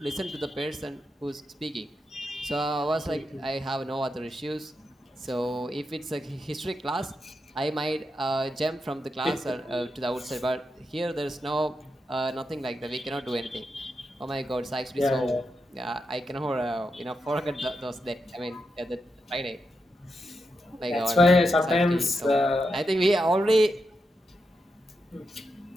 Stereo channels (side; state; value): both; normal; correlation 0.86